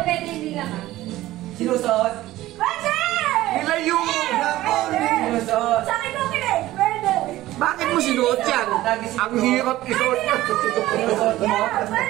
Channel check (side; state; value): left; quieter; 16.0 dB